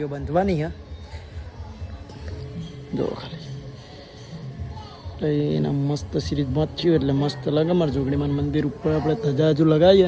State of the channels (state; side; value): identical; both; correlation 1.00